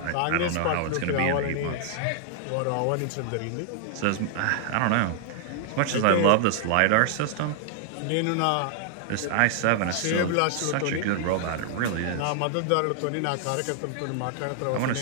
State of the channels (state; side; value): different; both; correlation 0.00